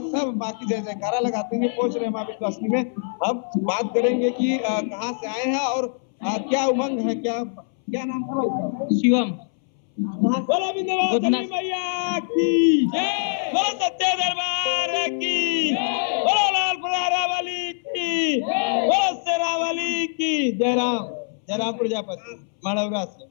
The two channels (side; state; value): right; silent; 63 dB below the other